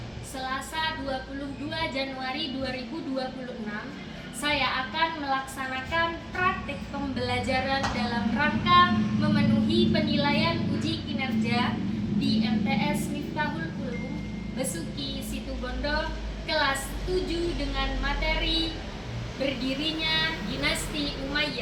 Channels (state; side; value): identical; both; correlation 1.00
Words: Selasa 22 Januari 2026, saya akan melaksanakan praktik pembelajaran dalam rangka memenuhi penilaian uji kinerja di MTS Miftahul Ulum Besuki Situbondo kelas 7 dengan materi berdirinya dinasti